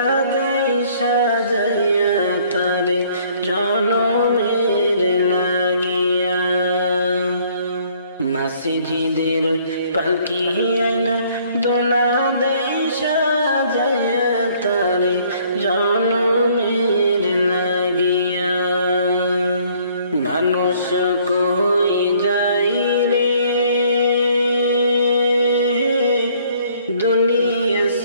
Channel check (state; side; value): inverted; both; correlation -0.61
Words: দেই সাজাইয়া তারে জনমের লাগিয়া মসজিদের পালকি আইনা দোলা দেই সাজাইয়া তারে জনমের লাগিয়া মানুষ কই যাই রে দুনিয়া